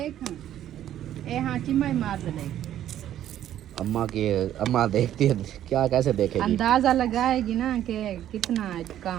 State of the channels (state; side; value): quieter; left; 11.6 dB